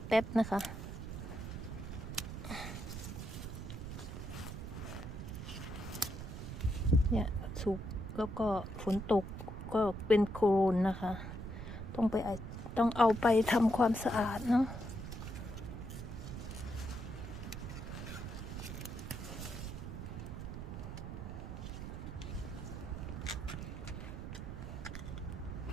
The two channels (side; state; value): right; noise; rumble, 7 dB below the sound